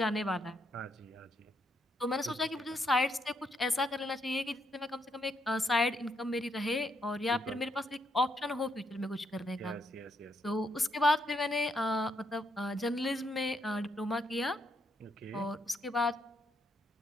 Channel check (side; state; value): both; normal; correlation 0.77